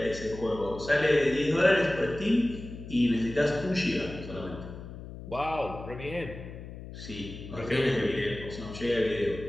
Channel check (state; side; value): noise; left; hum, 12 dB below the sound